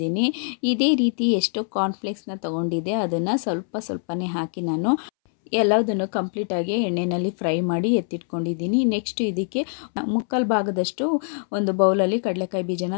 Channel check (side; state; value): right; silent; 63 dB below the other